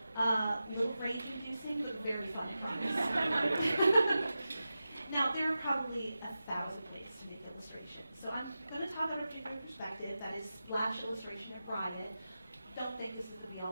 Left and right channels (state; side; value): inverted; both; correlation -0.92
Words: a little rage-inducing, but very fun, I promise. Now, there are probably 1,000 ways to make illustrations. So I'm going to talk about a particular perspective, that is splash illustration at Riot. Don't think this is the